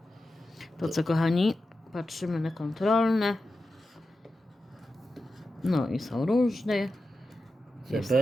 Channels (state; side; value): normal; both; correlation 0.91